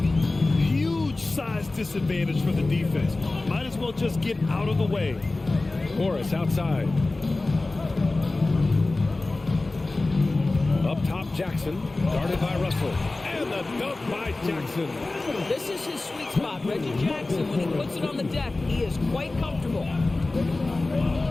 size disadvantage for the defense. Might as well just get out of the way. Morris outside. Up top, Jackson, guarded by Russell. And the dunk by Jackson. This is his sweet spot. Reggie Jackson, when he puts it on the deck, he is quite comfortable.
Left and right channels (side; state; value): right; quieter; 3.1 dB